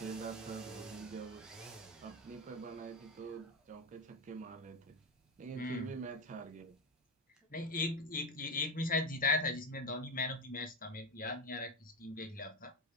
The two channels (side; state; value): both; normal; correlation 0.14